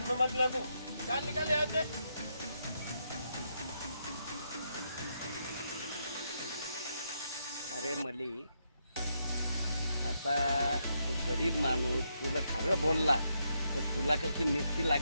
में मत लगो. चल निकल यहाँ से. अरे मलिक, आता तो गरीब माणूस तुला खरं बोलला तर तुला कशी मिरची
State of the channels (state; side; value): inverted; both; correlation -0.80